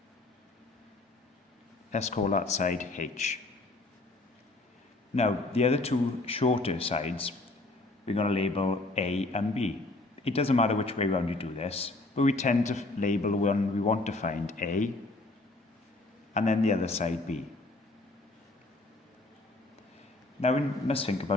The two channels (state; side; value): quieter; right; 3.0 dB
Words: Let's call that side H. Now, the other two shorter sides, we're going to label A and B. It doesn't matter which way around you do this, but we tend to label one we want to find A, and then the other side B. Now we must think